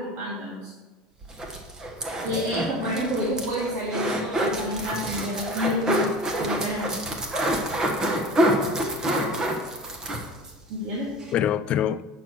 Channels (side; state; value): both; normal; correlation 0.36